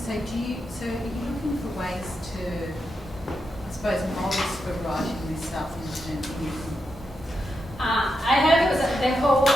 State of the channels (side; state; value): both; normal; correlation 0.85